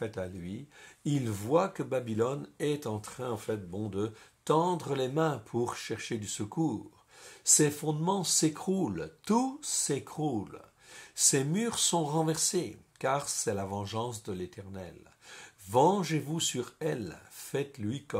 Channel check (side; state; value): both; identical; correlation 1.00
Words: à lui. Il voit que Babylone est en train en fait de tendre les mains pour chercher du secours. Ses fondements s'écroulent, tout s'écroule. Ses murs sont renversés, car c'est la vengeance de l'Éternel. Vengez-vous sur elle, faites-lui